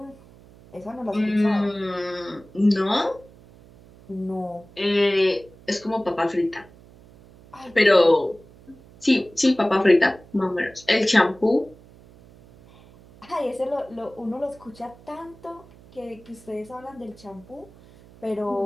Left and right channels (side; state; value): right; noise; hum, 24 dB below the sound